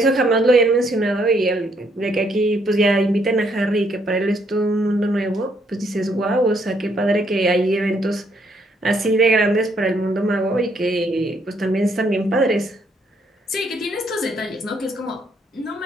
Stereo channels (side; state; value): both; normal; correlation 0.71